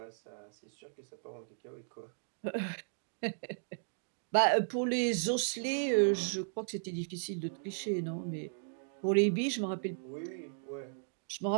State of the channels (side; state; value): left; silent; digital silence